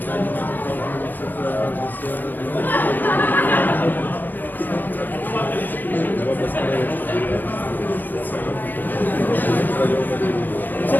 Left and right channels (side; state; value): right; late; 0.087 ms